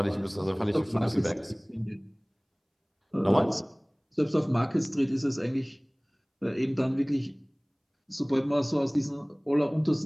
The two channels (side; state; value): both; identical; correlation 1.00